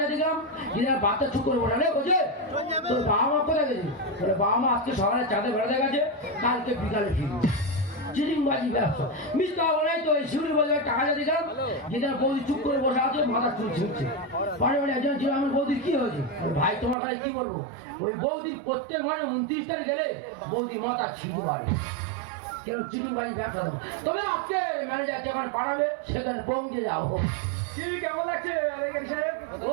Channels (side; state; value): left; drops out; at 16.9 s